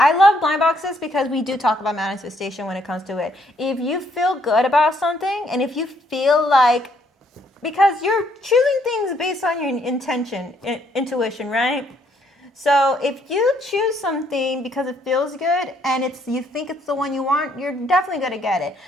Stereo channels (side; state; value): both; normal; correlation 0.69